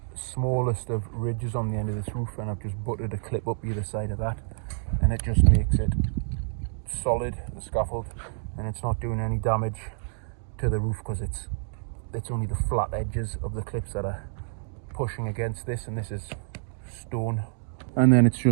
smallest of ridges on the end of this roof, and I've just butted a clip up either side of that, and it just makes it solid, the scaffold, and it's not doing any damage to the roof because it's only the flat edges of the clips that are pushing against this, and this is stone. And then it's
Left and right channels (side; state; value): left; silent; digital silence